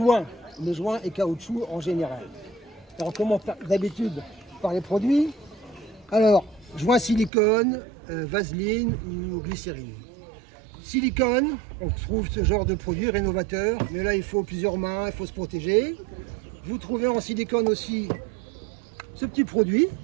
et caoutchouc en général. Alors on commence d'habitude par les produits. Alors, joint silicone, vaseline ou glycérine. Silicone, on trouve ce genre de produit rénovateur, mais là il faut plusieurs mains, il faut se protéger. Vous trouvez en silicone aussi ce petit produit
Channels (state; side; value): drops out; left; at 7.3 s